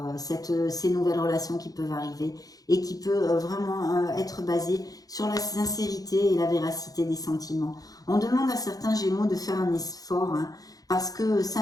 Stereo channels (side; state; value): right; late; 0.18 ms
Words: ces nouvelles relations qui peuvent arriver et qui peut vraiment être basée sur la sincérité et la véracité des sentiments. On demande à certains Gémeaux de faire un effort, hein, parce que